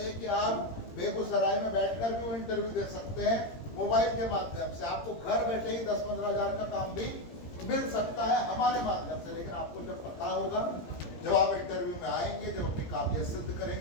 कि आप बेगूसराय में बैठकर भी वो इंटरव्यू दे सकते हैं मोबाइल के माध्यम से। आपको घर बैठे ही 10-15 हजार का काम भी मिल सकता है हमारे माध्यम से। लेकिन आपको जब पता होगा, जब आप इंटरव्यू में आएंगे, जब अपनी काबिलियत सिद्ध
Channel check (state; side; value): late; right; 17 ms